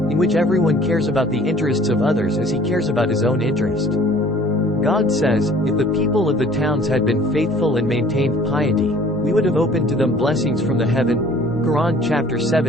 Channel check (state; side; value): normal; both; correlation 0.52